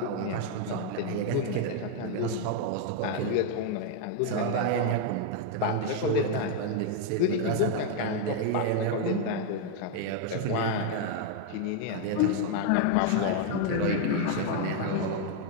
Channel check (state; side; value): different; both; correlation 0.01